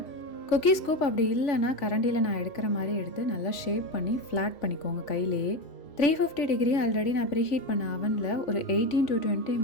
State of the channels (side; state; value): right; late; 3.4 ms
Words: குக்கீ ஸ்கூப் அப்படி இல்லைன்னா கரண்டியில் நான் எடுக்கிற மாதிரி எடுத்து நல்லா ஷேப் பண்ணி ஃப்ளாட் பண்ணிக்கோங்க கையிலேயே. 350 டிகிரி ஆல்ரெடி நான் ப்ரீஹீட் பண்ண அவனில் ஒரு 18 to 20